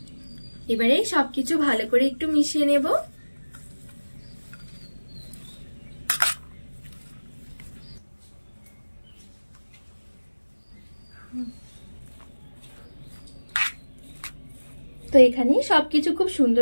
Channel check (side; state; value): both; inverted; correlation -1.00